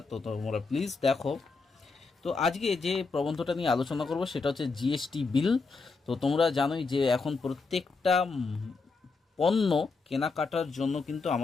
তো তোমরা প্লিজ দেখো। তো আজকে যে প্রবন্ধটা নিয়ে আলোচনা করব সেটা হচ্ছে জিএসটি বিল। তো তোমরা জানোই যে এখন প্রত্যেকটা পণ্য কেনাকাটার জন্য কিন্তু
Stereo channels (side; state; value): right; quieter; 4.2 dB